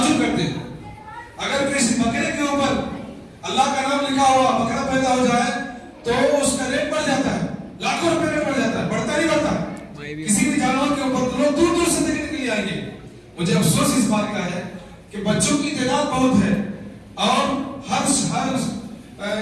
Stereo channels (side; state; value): both; identical; correlation 1.00